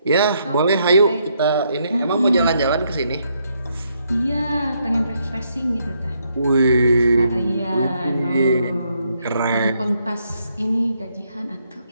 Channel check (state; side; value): inverted; both; correlation -0.75